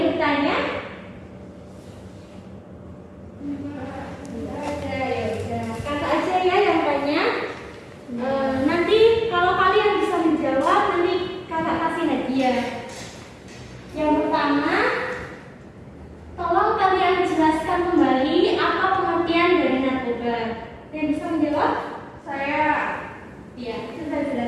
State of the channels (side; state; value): both; identical; correlation 1.00